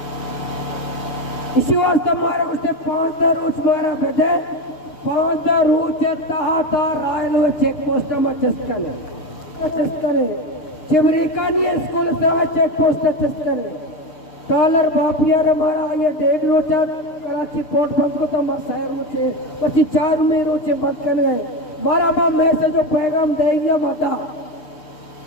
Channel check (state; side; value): late; right; 7.0 ms